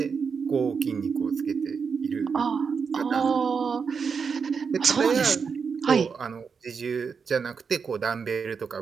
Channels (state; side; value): quieter; left; 5.8 dB